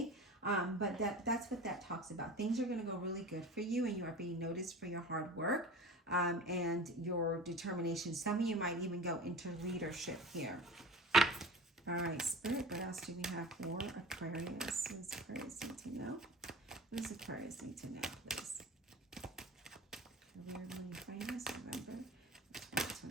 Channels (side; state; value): both; normal; correlation 0.35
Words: but that's what that talks about. Things are going to go really good for you, and you are being noticed for your hard work and your determination. Some of you might even go into leadership here. All right, Spirit, what else do we have for Aquarius? What does Aquarius need to know? What does Aquarius need to know, please? Career, money, finance, November